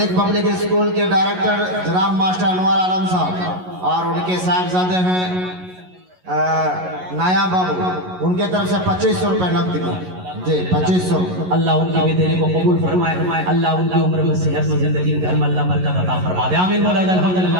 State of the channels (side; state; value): left; late; 11 ms